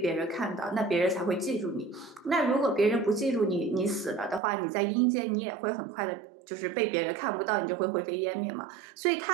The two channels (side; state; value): left; drops out; at 4.4 s